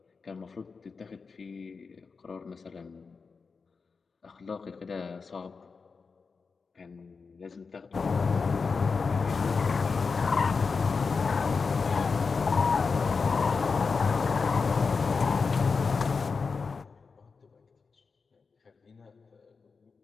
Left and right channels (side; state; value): right; quieter; 4.9 dB